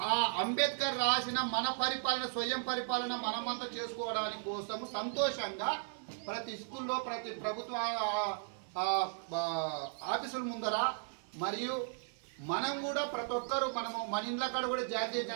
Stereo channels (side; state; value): left; silent; 54 dB below the other